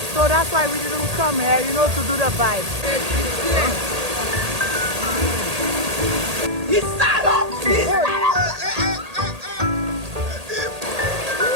So that's why we didn't come here, you know, to do the vibe. He's stand up!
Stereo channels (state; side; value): late; left; 1.8 ms